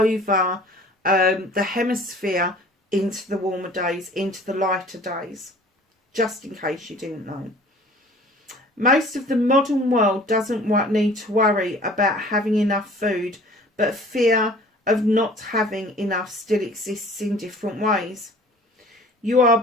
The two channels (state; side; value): normal; both; correlation 0.48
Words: the hemisphere into the warmer days, into the lighter days, just in case you didn't know. Most of the modern world doesn't need to worry about having enough food, but fear of not having enough still exists in different ways. You are